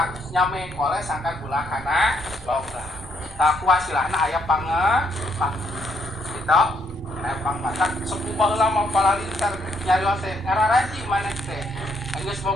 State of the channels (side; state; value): both; normal; correlation 0.72